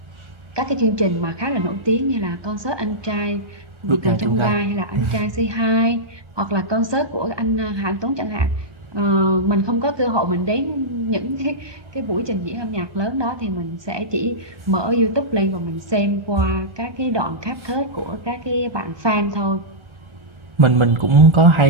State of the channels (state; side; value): late; left; 1.2 ms